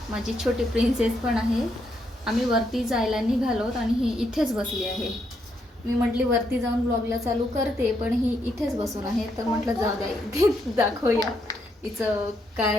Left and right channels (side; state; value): both; normal; correlation 0.77